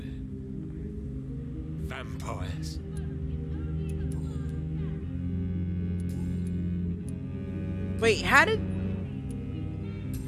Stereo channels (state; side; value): identical; both; correlation 1.00